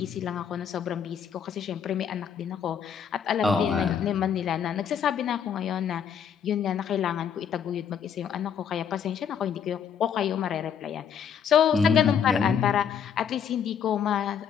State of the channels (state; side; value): quieter; right; 7.8 dB